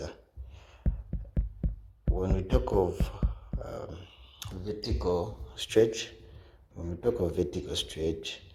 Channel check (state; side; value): identical; both; correlation 1.00